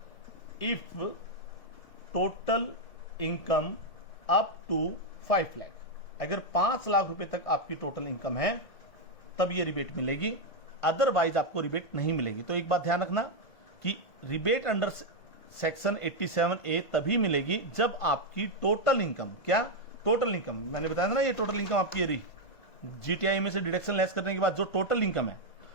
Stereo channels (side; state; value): right; late; 1.5 ms